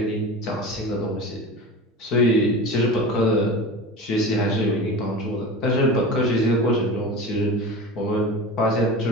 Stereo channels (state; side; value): normal; both; correlation 0.31